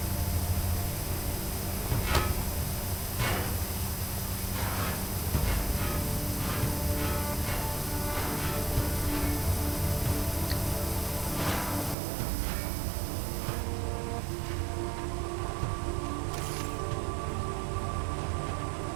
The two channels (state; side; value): drops out; left; at 12.0 s